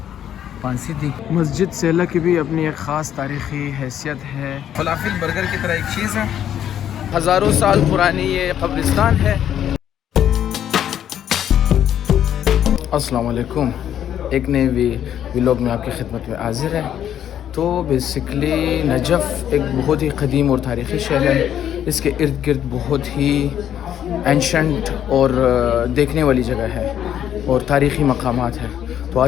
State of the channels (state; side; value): quieter; right; 10.2 dB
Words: پھانسی دی۔ مسجد سیلہ کی بھی اپنی ایک خاص تاریخی حیثیت ہے۔ فلافل برگر کی طرح ایک چیز ہے، ہزاروں سال پرانی یہ قبرستان ہے۔ السلام علیکم، ایک نئے ولاگ میں آپ کی خدمت میں حاضر ہے۔ تو بیسکلی نجف ایک بہت ہی قدیم اور تاریخی شہر ہے۔ اس کے ارد گرد بہت ہی اینشنٹ اور دیکھنے والی جگہ ہے اور تاریخی مقامات ہیں۔ تو